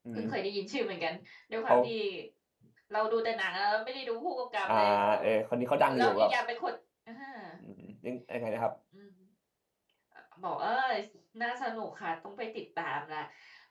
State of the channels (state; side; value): identical; both; correlation 1.00